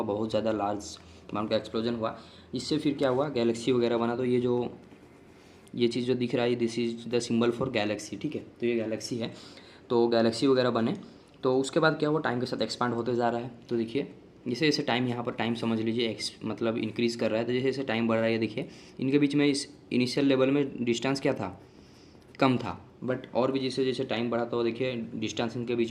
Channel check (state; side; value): identical; both; correlation 1.00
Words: बहुत ज़्यादा लार्ज अमाउंट का एक्सप्लोजन हुआ। इससे फिर क्या हुआ, गैलेक्सी वगैरह बना। तो ये चीज़ जो दिख रहा है, this is the symbol for Galaxy, ठीक है। तो ये गैलेक्सी है, तो गैलेक्सी वगैरह बने। तो उसके बाद क्या हुआ, टाइम के साथ एक्सपांड होते जा रहा है। तो देखिए जैसे जैसे टाइम, यहाँ पर टाइम समझ लीजिए मतलब इंक्रीज़ कर रहा है। तो जैसे जैसे टाइम बढ़ रहा है, देखिए इनके बीच में इस इनिशियल लेवल में डिस्टेंस क्या था, कम था, बट और भी जैसे जैसे टाइम बढ़ा तो देखिए डिस्टेंस इनके बीच